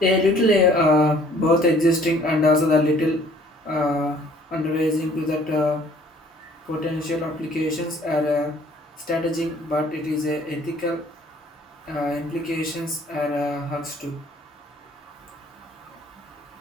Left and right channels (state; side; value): normal; both; correlation 0.56